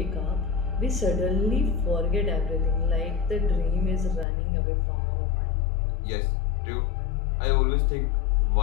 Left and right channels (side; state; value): right; drops out; at 4.2 s